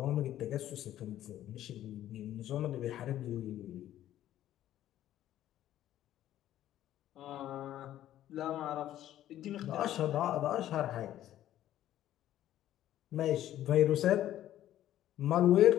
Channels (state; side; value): quieter; right; 12.7 dB